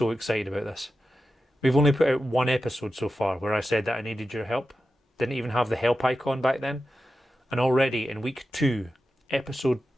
excited about this. We've only put out one episode so far where I said that I needed your help. Didn't even have the help icon back then. And already in week 2, episode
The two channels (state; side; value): normal; both; correlation 0.92